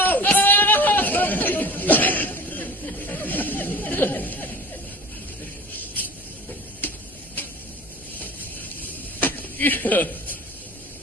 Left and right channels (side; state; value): both; normal; correlation 0.40